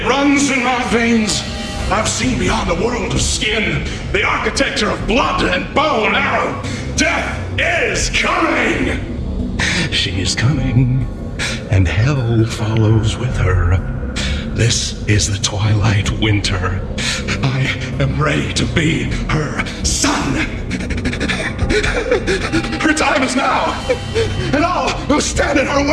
runs in my veins. I've seen beyond the world of skin, the architecture of blood and bow and arrow. Death is coming! She is coming, and hell follows with her. This is the twilight winter. I am ready to be her son. Her time is now, and all who stand in her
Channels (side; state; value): both; identical; correlation 1.00